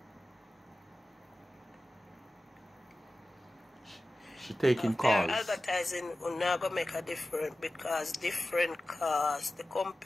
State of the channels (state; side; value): normal; both; correlation 0.95